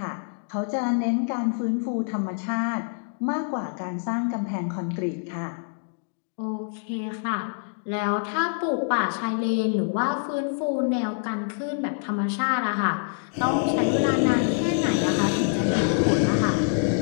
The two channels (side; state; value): right; silent; digital silence